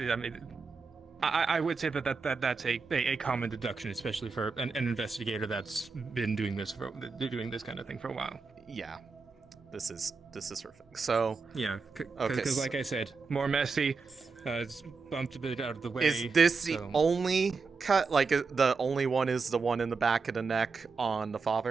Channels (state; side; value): quieter; left; 4.6 dB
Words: mean, I would say that's a common deduction, especially for an investigator that's been doing this kind of thing for a while. Yeah. This is her thing. So yeah, because like I said, more messy. It's bumped a bit out of the way. Is this the only cut? Like the only one is the one in the back of the neck on the